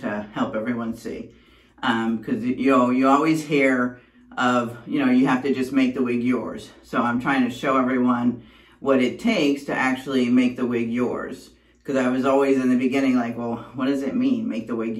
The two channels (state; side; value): identical; both; correlation 1.00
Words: help everyone see. Because you always hear of, you have to just make the wig yours. So I'm trying to show everyone what it takes to actually make the wig yours. Because I was always in the beginning like, well, what does it mean, make the wig